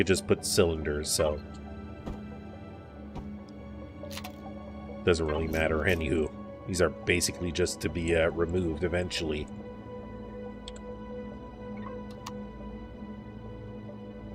just put cylinders, so. Doesn't really matter, anywho. These are basically just to be removed eventually.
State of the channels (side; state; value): both; identical; correlation 1.00